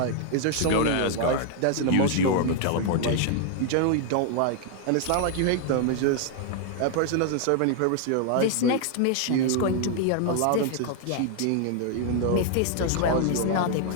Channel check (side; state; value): both; different; correlation 0.00